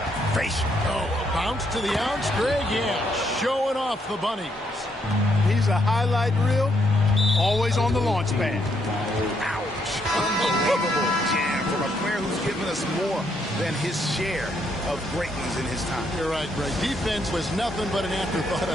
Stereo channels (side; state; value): both; normal; correlation 0.74